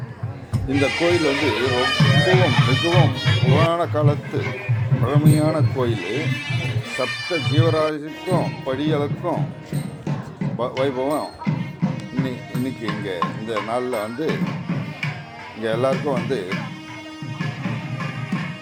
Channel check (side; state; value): both; identical; correlation 1.00